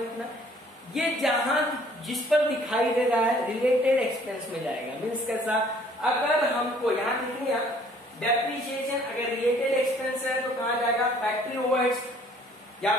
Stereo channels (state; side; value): normal; both; correlation 0.58